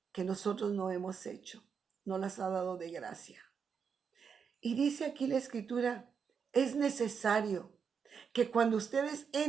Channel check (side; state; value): left; quieter; 6.5 dB